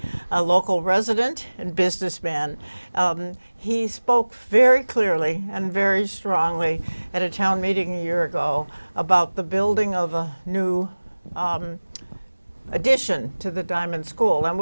a local resident and businessman. He spoke very clearly and very strongly at a town meeting a year ago about the building of a new addition to the Diamond School, and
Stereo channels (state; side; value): inverted; both; correlation -1.00